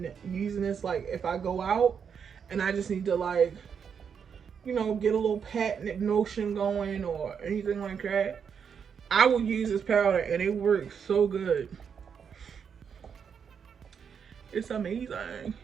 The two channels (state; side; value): quieter; left; 7.0 dB